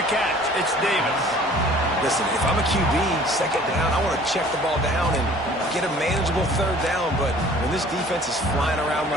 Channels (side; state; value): both; normal; correlation 0.51